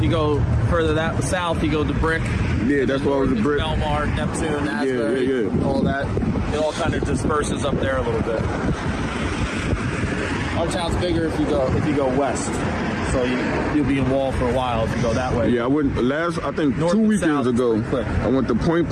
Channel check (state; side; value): identical; both; correlation 1.00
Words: you go further that south, you go to Brick. Yeah, that's why it was a brick. Belmar, Neptune, Asbury, yeah. all that. It all kind of disperses up there a little bit. Our town's bigger if you go west, so you'll be in Wall for a while if you go that way. Yeah, I went I think North 2 and weekends south, ago. pretty quick. I went to Point